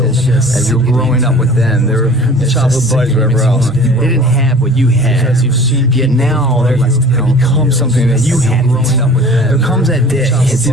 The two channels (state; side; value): normal; both; correlation 0.44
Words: As you're growing up with them, they're childhood buddies, whatever else. They didn't have what you had. Yet now they become something that you had. There comes that day. It's